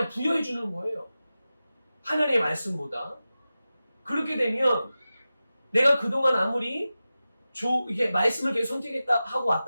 부여해 주는 거예요. 하나님의 말씀보다. 그렇게 되면 내가 그동안 아무리 이게 말씀을 계속 선택하고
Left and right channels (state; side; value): inverted; both; correlation -0.94